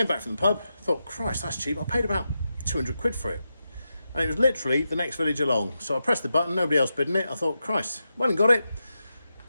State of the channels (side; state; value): both; inverted; correlation -0.88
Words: back from the pub, thought, Christ, that's cheap. I paid about 200 quid for it. And it was literally the next village along. So I pressed the button, nobody else bidding it. I thought, Christ, went and got it.